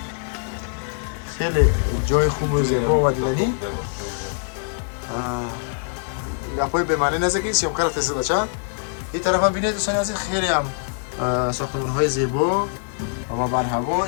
خیلی جای خوب و زیبا و دیدنی. گپای به معنی نزدیکی سیامکار فیصد بچه. این طرف هم ببینید دوستان عزیز خیلی هم ساختمان های زیبا و بر هوا.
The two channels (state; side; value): silent; right; digital silence